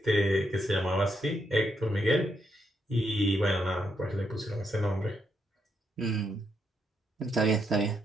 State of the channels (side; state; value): both; normal; correlation 0.79